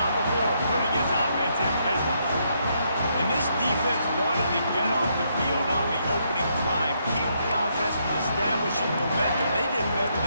before putting his offense in business. And this defense wanted to get off the field on the opening drive, keep the offense from establishing momentum. They did better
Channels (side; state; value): both; inverted; correlation -0.75